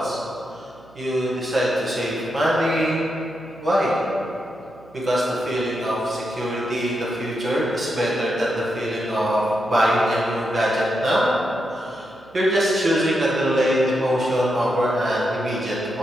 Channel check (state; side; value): noise; right; hum, 27 dB below the sound